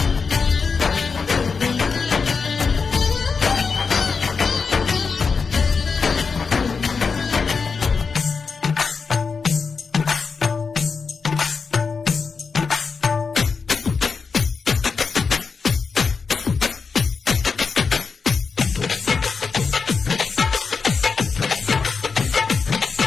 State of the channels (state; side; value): quieter; right; 5.1 dB